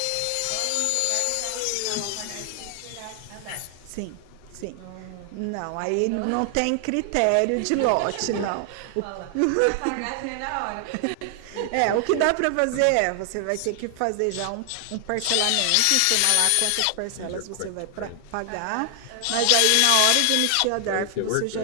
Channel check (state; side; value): different; both; correlation 0.00